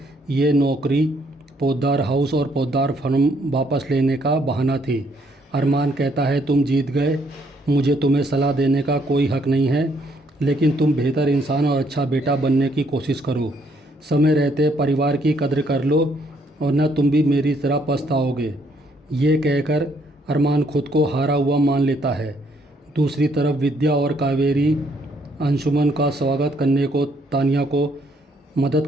ये नौकरी पोद्दार हाउस और पोद्दार फर्म वापस लेने का बहाना थी। अरमान कहता है, तुम जीत गए, मुझे तुम्हें सलाह देने का कोई हक नहीं है, लेकिन तुम बेहतर इंसान और अच्छा बेटा बनने की कोशिश करो। समय रहते परिवार की कद्र कर लो, वरना तुम भी मेरी तरह पछताओगे। ये कहकर अरमान खुद को हारा हुआ मान लेता है। दूसरी तरफ विद्या और कावेरी अंशुमन का स्वागत करने को तानिया को मदद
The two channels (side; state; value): both; normal; correlation 0.69